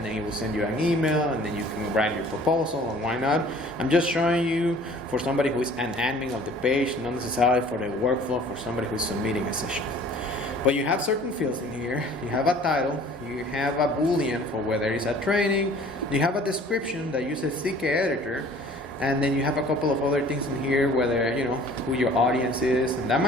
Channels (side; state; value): both; normal; correlation 0.50